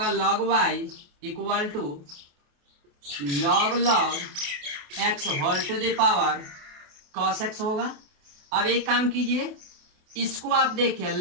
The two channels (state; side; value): late; left; 28 ms